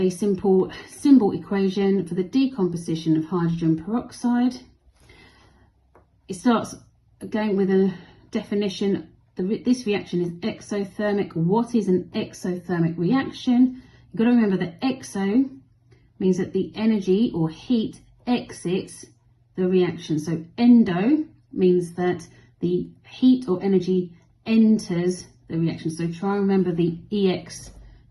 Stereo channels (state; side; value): identical; both; correlation 1.00